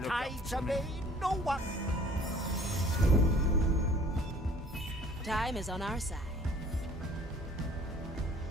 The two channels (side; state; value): both; normal; correlation 0.53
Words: tides obey no one. Time is on our side.